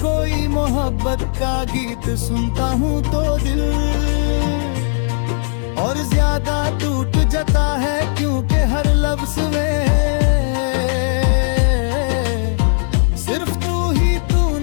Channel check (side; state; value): right; silent; 61 dB below the other